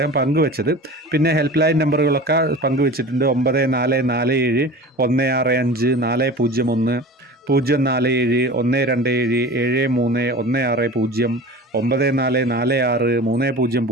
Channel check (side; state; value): both; normal; correlation 0.36